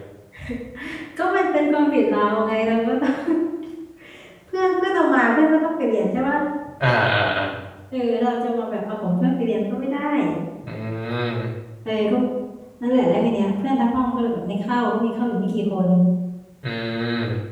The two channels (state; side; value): identical; both; correlation 1.00